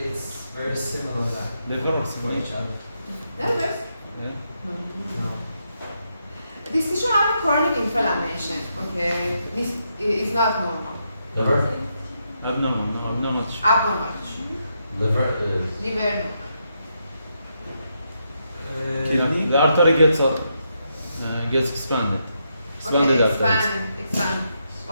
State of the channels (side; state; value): both; inverted; correlation -0.81